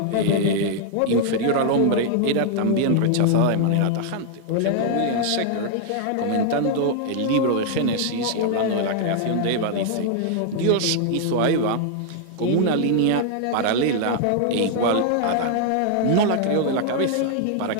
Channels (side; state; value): both; different; correlation -0.01